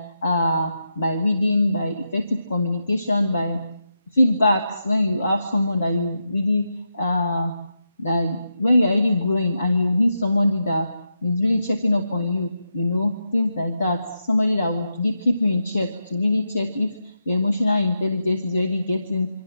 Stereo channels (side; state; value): both; inverted; correlation -0.86